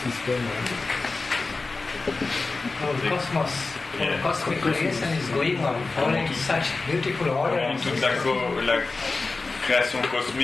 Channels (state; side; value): quieter; right; 3.7 dB